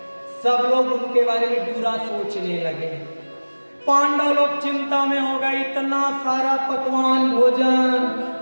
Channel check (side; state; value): both; inverted; correlation -1.00